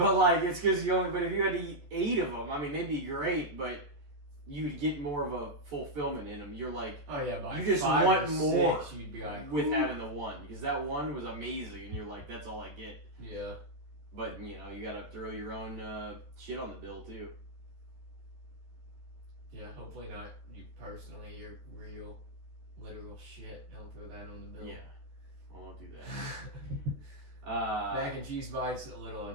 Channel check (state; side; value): late; left; 14 ms